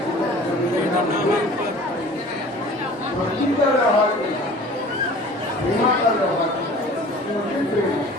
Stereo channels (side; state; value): both; normal; correlation 0.45